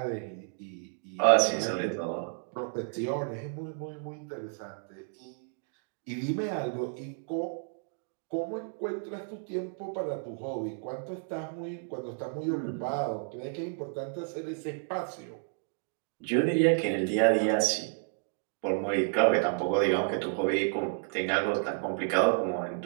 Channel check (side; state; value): left; silent; digital silence